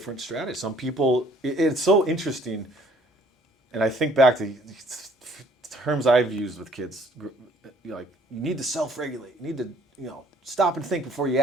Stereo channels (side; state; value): both; normal; correlation 0.59